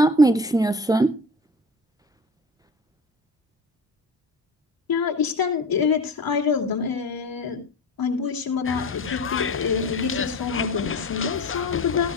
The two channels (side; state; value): both; normal; correlation 0.33